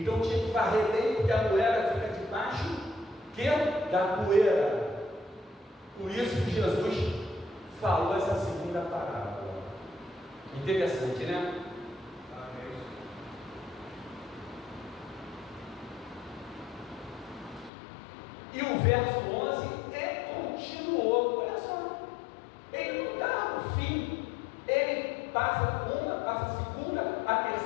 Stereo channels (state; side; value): drops out; right; at 17.7 s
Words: tinha que varrer bem, porque a moeda fica debaixo da poeira. Por isso que Jesus falou essa segunda parábola. Interessante, né? E o verso 11 continuou. Olha só, ele não dá o fim, ele passa uma, passa a segunda, a